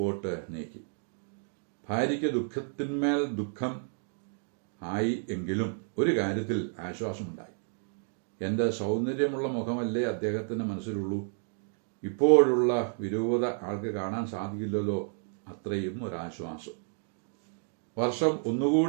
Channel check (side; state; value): left; silent; 57 dB below the other